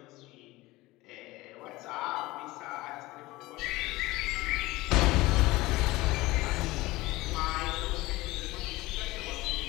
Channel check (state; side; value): quieter; right; 19.6 dB